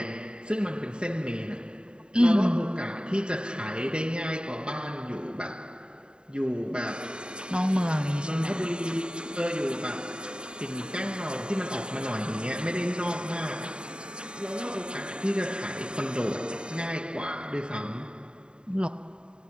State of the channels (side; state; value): left; late; 0.049 ms